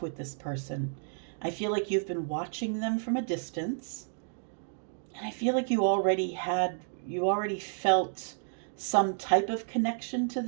with this person. I feel like you've been watching them from a distance. And I feel like you already felt some type of connection to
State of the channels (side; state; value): left; silent; digital silence